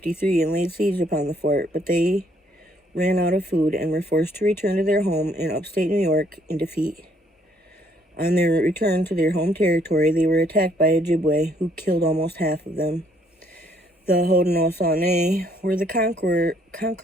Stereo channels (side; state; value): both; normal; correlation 0.66